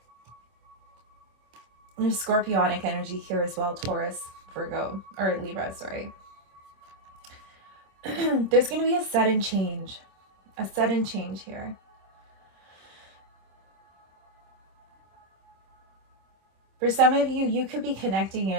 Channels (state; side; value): late; left; 26 ms